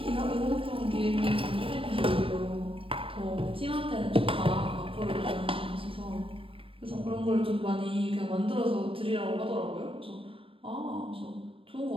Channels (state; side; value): late; left; 0.26 ms